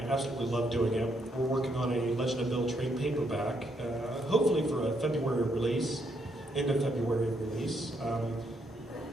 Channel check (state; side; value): normal; both; correlation 0.75